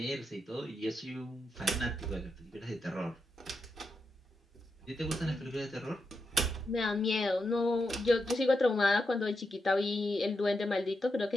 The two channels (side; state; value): both; normal; correlation 0.86